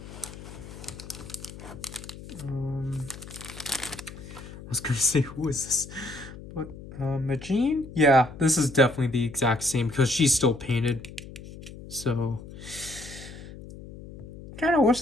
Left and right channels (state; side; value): noise; left; hum, 14 dB below the sound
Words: I was gonna say, who is this? But Majin? Yeah, this is definitely the exact same because she's still painted. So kind of wish